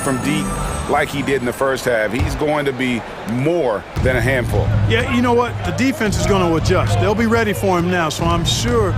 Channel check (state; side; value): identical; both; correlation 1.00